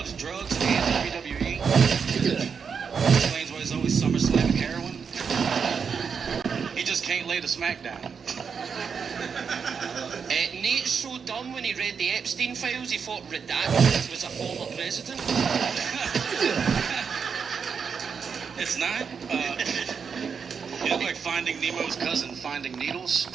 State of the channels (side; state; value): left; quieter; 6.2 dB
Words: drugs and WWE. Explains why he's always SummerSlam heroin. He just can't lay the smack down. Nate's so dumb when he read the Epstein files, he thought Redacted was a former president. It's not. Finding Nemo's cousin, Finding Needles?